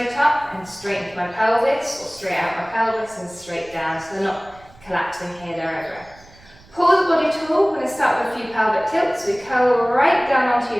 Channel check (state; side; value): noise; right; rumble, 25 dB below the sound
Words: up and straight into my pelvis, or straight out my pelvis and straight down, so they're not collapsing here, they're everywhere. Pull the body tall. We're going to start with a few pelvic tilts. We curl right down onto